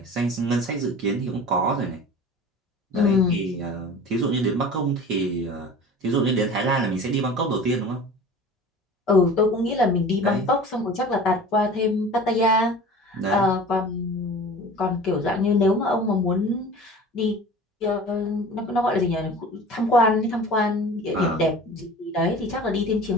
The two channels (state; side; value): normal; both; correlation 0.40